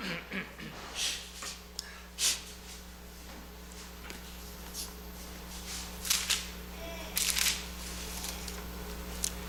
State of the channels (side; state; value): both; identical; correlation 1.00